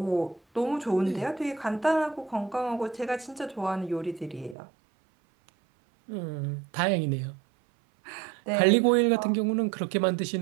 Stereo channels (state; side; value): drops out; left; at 4.5 s